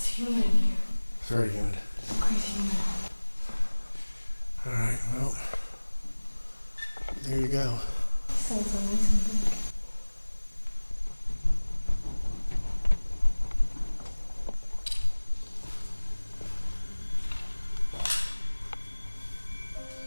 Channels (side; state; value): both; inverted; correlation -1.00